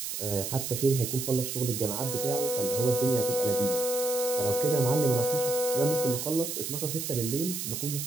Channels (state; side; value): noise; right; hiss, 4 dB below the sound